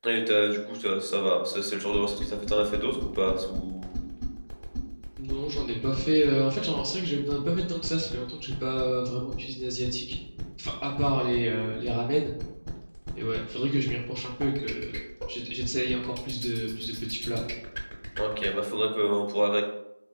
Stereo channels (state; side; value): inverted; both; correlation -1.00